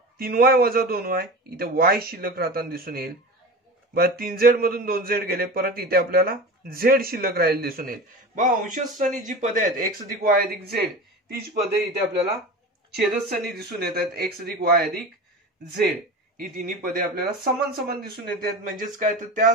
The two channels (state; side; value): normal; both; correlation 0.31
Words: 3y वजा 2y इथे y शिल्लक राहताना दिसून येईल. बघा 3z मधून 2z गेले परत इथे आपल्याला z शिल्लक राहील दिसून येईल. बघा अंशस्थानी जी पदे आहेत x अधिक y अधिक z तीच पदे इथे आपल्याला छेदस्थानी दिसून येतात x अधिक y अधिक z ही तिन्ही पदे आपल्याला समान समान दिसून येतात. म्हणजेच काय तर त्या